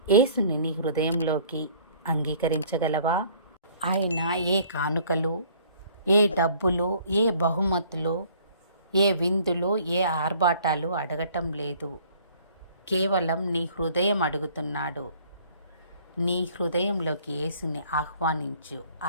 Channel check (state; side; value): inverted; both; correlation -0.56